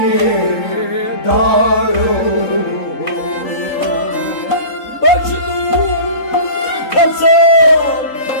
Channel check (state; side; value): late; right; 3.8 ms